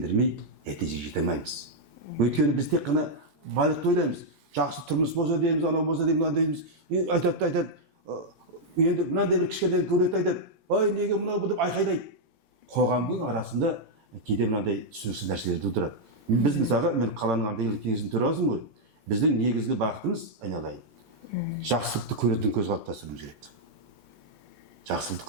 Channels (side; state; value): left; late; 14 ms